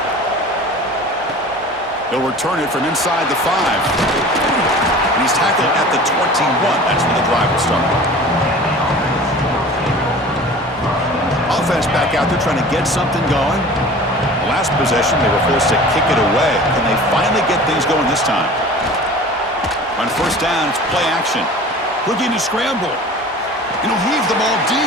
He'll return it from inside the 5. And he's tackled at the 21. That's when the drive will start. Offense back out there trying to get something going. The last possession, they were forced to kick it away. Can they finally get things going this time? On first down, it's play action. Looking to scramble. And he'll heave the ball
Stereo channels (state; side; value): normal; both; correlation 0.41